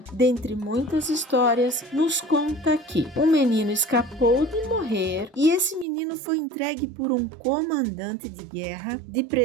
dentre muitas histórias, nos conta que um menino escapou de morrer e esse menino foi entregue por um comandante de guerra de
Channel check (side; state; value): left; drops out; at 5.9 s